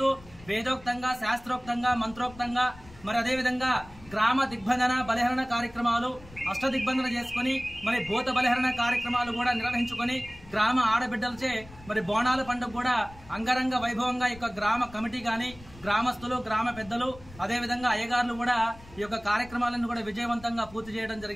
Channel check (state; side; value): noise; left; rumble, 20 dB below the sound